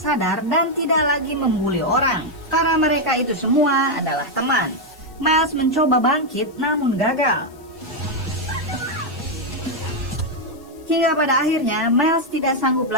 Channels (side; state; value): left; noise; hiss, 28 dB below the sound